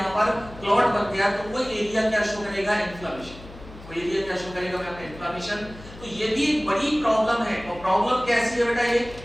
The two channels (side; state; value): left; noise; hum, 17 dB below the sound